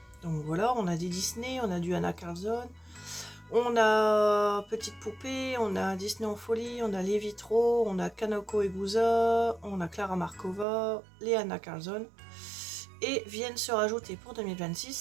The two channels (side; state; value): left; drops out; at 10.7 s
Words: Donc voilà, on a des Disney, on a du Anna Carlson, on a Petite Poupée, on a Disney en folie, on a Les Vitraux, on a Kanako Egusa, on a Clara Markova, les Anna Carlson. Et viennent se rajouter pour